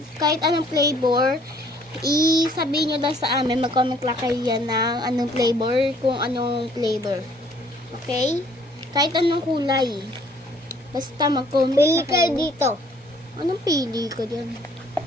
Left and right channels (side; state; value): both; normal; correlation 0.60